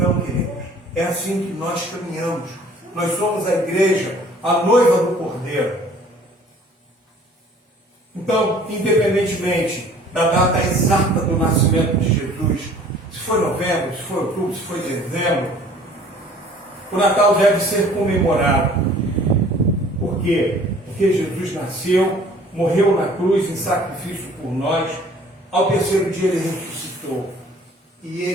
queridos, é assim que nós caminhamos. Nós somos a igreja, a noiva do Cordeiro. Então, independentemente da data exata do nascimento de Jesus, se foi novembro, se foi outubro, se foi dezembro, o Natal deve ser comemorado. Por quê? Porque Jesus nasceu, morreu na cruz em sacrifício por nós, ao terceiro dia ele ressuscitou. E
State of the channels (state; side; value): normal; both; correlation 0.52